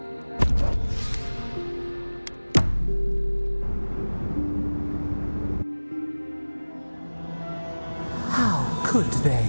How could they?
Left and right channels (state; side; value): inverted; both; correlation -1.00